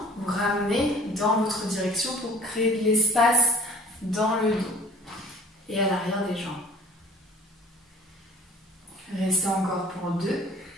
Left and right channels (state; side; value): normal; both; correlation 0.51